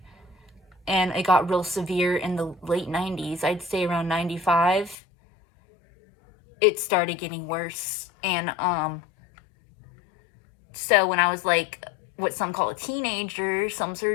And it got real severe in the late 90s. I'd say around 95. It started getting worse. And so when I was like what some call a teenager, some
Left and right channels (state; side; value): drops out; right; at 5.0 s